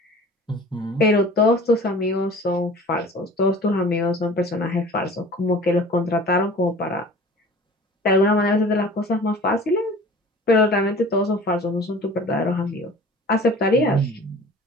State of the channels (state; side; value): normal; both; correlation 0.44